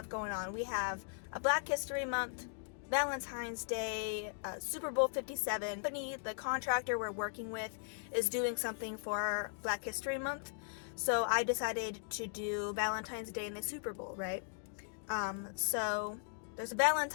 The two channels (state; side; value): silent; right; digital silence